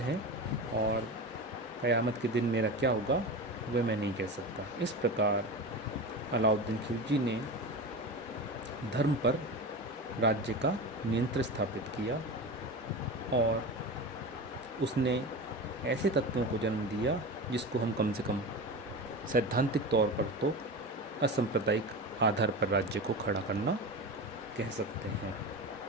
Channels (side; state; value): both; normal; correlation 0.26